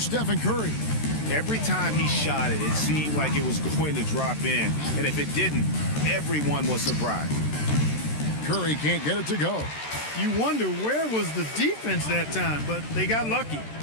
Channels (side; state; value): right; late; 13 ms